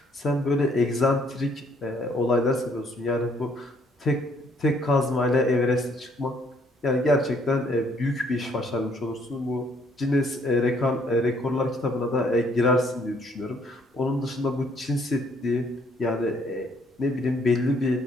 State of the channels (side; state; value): both; normal; correlation 0.66